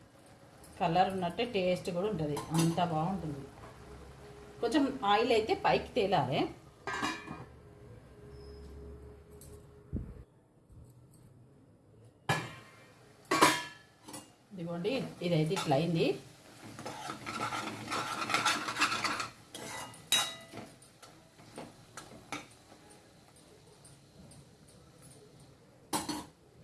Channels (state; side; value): identical; both; correlation 1.00